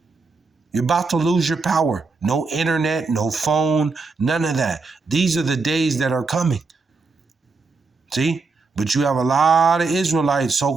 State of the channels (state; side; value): quieter; left; 4.2 dB